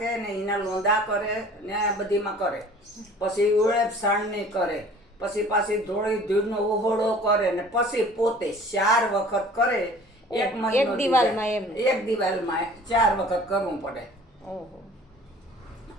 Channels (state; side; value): normal; both; correlation 0.48